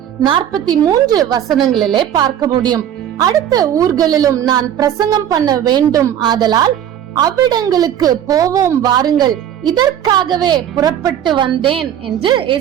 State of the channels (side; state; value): left; quieter; 10.2 dB